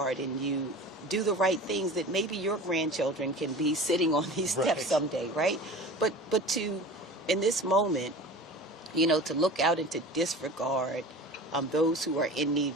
and you do the right things, that maybe your grandchildren can be sitting on these steps someday, right? But to, in this moment, to look out and to disregard those who are in need.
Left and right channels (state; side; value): normal; both; correlation 0.37